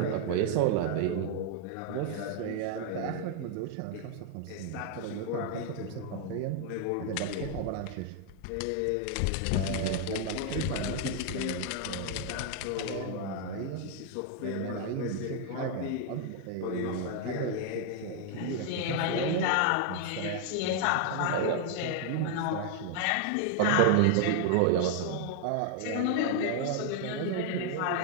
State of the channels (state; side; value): different; both; correlation 0.00